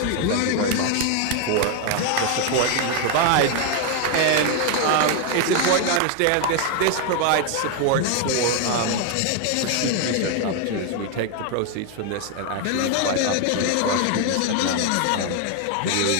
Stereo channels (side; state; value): both; different; correlation 0.01